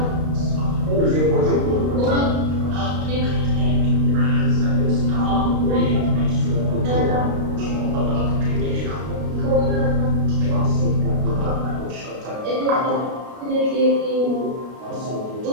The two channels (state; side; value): late; left; 32 ms